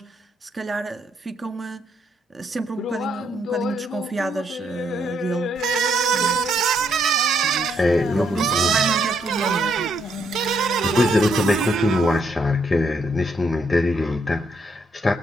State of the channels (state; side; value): normal; both; correlation 0.74